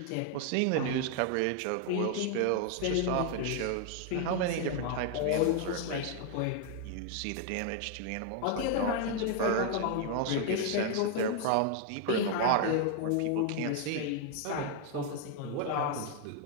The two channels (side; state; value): both; different; correlation 0.00